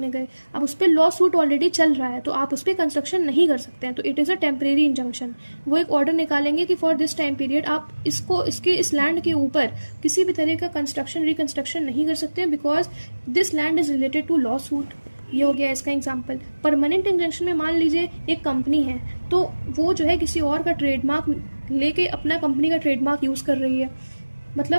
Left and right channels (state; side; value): inverted; both; correlation -1.00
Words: गए। अब उस पर लॉ सूट ऑलरेडी चल रहा है तो आप उस पर कंस्ट्रक्शन नहीं कर सकते हैं, तो it is a temporary injunction. वो एक ऑर्डर निकालेंगे कि फॉर दिस टाइम पीरियड आप इस लैंड के ऊपर किसी भी तरह का कंस्ट्रक्शन रिकंस्ट्रक्शन नहीं कर सकते हैं because this land is related to lawsuit. ये हो गया इसका एग्जाम्पल। परमानेंट इंजंक्शन में मान लीजिए एक कंपनी है, तो वो जो है किसी और का ट्रेडमार्क लेके अपना कंपनी का ट्रेडमार्क यूज़ कर रही है,